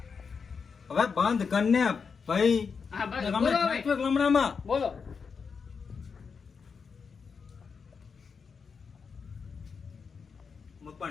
હવે બંધ કરને ભાઈ લમણામાં બોલો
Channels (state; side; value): quieter; right; 5.7 dB